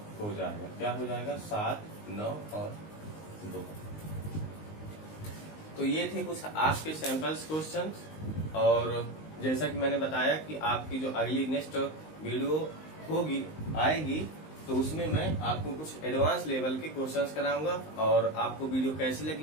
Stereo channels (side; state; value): right; late; 19 ms